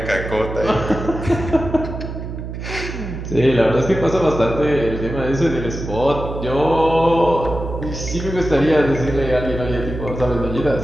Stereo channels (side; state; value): right; noise; hum, 7 dB below the sound